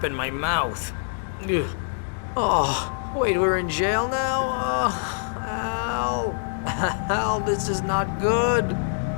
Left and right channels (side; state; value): right; silent; digital silence